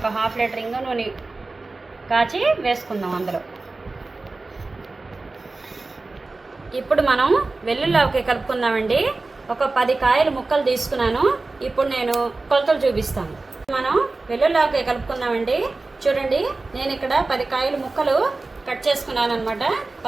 1/2 లీటర్ ఇంగు నూనె కాచి వేసుకుందాం అందులో. ఇప్పుడు మనం వెల్లుల్లి ఆవకాయ కలుపుకుందామండి. ఒక 10 కాయలు ముక్కలు తీసుకున్నాను. ఇప్పుడు నేను కొలతలు చూపిస్తాను. మనం వెల్లుల్లి ఆవకాయ కలుపుకుందామండి. చూడండి, నేను ఇక్కడ 10 కాయలు ముక్కలు కట్ చేసుకున్నాను అనమాట.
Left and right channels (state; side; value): quieter; left; 3.4 dB